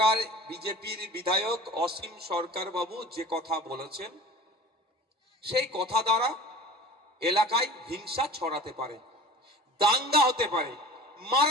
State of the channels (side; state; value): both; normal; correlation 0.40